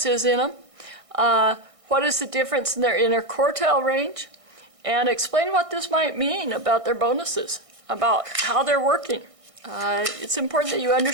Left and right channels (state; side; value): late; left; 1.6 ms